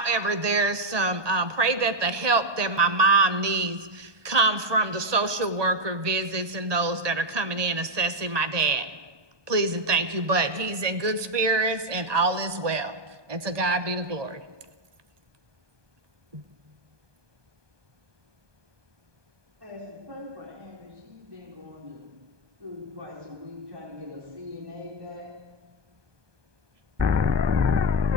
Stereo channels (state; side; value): late; left; 1.2 ms